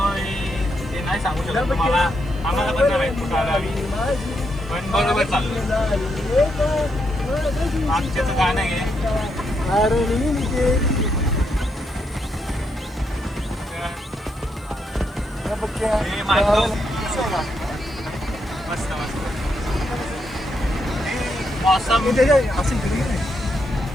ते नाही सांगू शकत तुम्हाला. आम्हाला पण नाही माहित कुठं आलो आम्ही. पण बरोबर चाललो. मागच्याचं गाणं आहे. हे मागतो. मस्त मस्त. मौसम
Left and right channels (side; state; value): left; noise; hiss, 29 dB below the sound